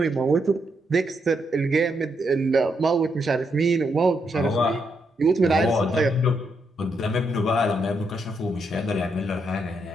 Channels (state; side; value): normal; both; correlation 0.79